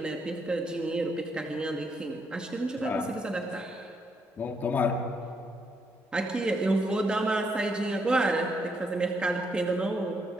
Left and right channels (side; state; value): both; normal; correlation 0.76